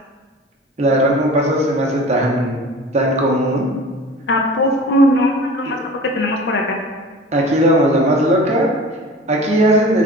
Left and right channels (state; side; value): normal; both; correlation 0.40